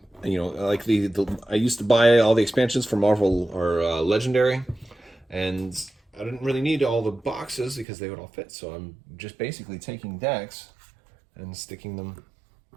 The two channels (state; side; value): drops out; left; at 7.9 s